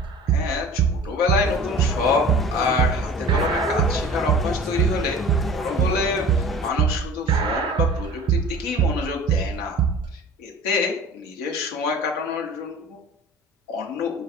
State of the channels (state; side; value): normal; both; correlation 0.42